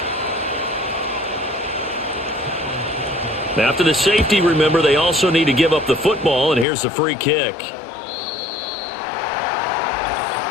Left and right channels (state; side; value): drops out; right; at 6.7 s